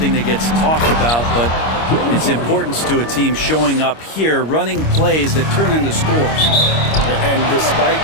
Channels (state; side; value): late; right; 25 ms